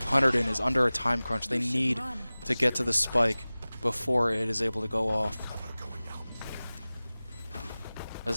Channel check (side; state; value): both; inverted; correlation -0.98